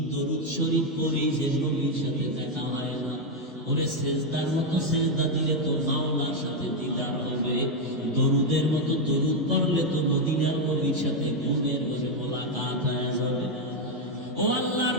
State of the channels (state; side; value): normal; both; correlation 0.03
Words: দরুদ শরীফ পড়ি যে নবীর সাথে দেখা হয় না। ওরে সেজদার মতো সেজদা দিলে তো মাওলার সাথে দিদার হবে, দরুদের মতো দরুদ পড়লে তো মদিনার নবীর সাথে ঘুমের ঘরে মোলাকাত হয়ে যাবে। ও আল্লাহর